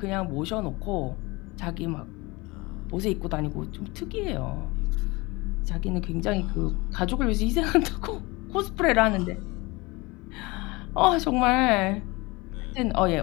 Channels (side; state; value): right; quieter; 23.9 dB